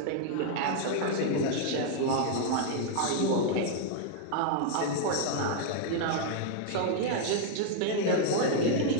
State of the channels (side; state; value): both; different; correlation 0.00